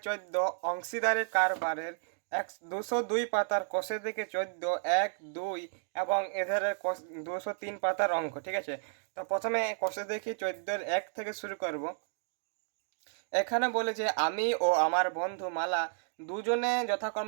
14 অংশীদারের কারবারের 202 পাতার কোষে থেকে 14, 1, 2 এবং এধারে 203 পাতার অঙ্ক। ঠিক আছে, তো প্রথমে কোষে দেখি 14 1 থেকে শুরু করব। এখানে বলে যে আমি ও আমার বন্ধু মালা দুজনে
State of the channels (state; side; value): silent; left; digital silence